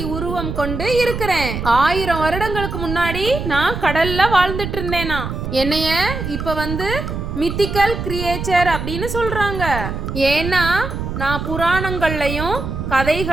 உருவம் கொண்டு இருக்கிறேன். 1000 வருடங்களுக்கு முன்னாடி நான் கடல்ல வாழ்ந்துட்டு இருந்தேனா. என்னைய இப்ப மித்திக்கல் கிரியேச்சர் அப்படின்னு சொல்றாங்க. ஏன்னா நான் புராணங்கள்லயும்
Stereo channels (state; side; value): noise; right; rumble, 5 dB below the sound